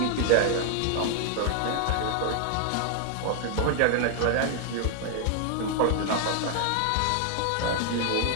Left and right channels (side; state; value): both; different; correlation 0.00